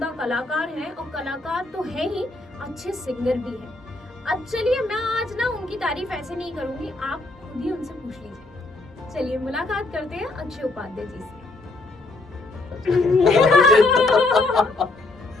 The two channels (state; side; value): quieter; right; 3.1 dB